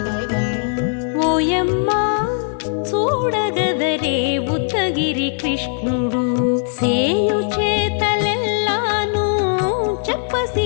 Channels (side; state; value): right; silent; digital silence